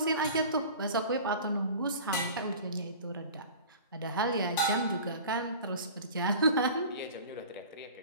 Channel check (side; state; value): both; inverted; correlation -0.39